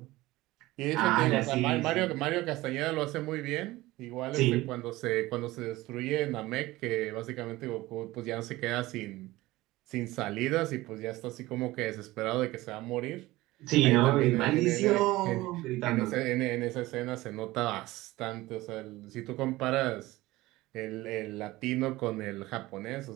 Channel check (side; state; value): left; quieter; 18.6 dB